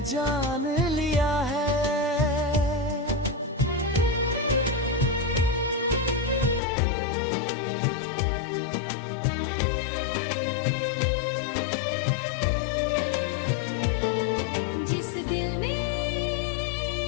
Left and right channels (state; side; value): drops out; right; at 6.6 s